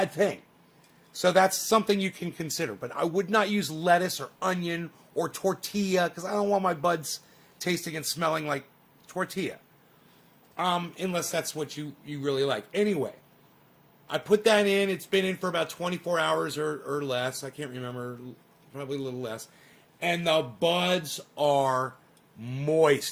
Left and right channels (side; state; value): both; identical; correlation 1.00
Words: thing. So that's something you can consider. But I would not use lettuce or onion or tortilla because I don't want my buds tasting and smelling like tortilla. Unless that's what you really like. Anyway, I put that in. It's been in for about 24 hours or less. I can't remember. Probably a little less. And the buds are